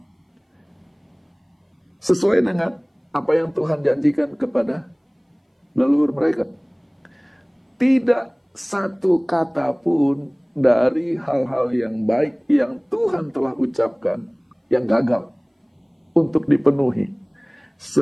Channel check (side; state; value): both; identical; correlation 1.00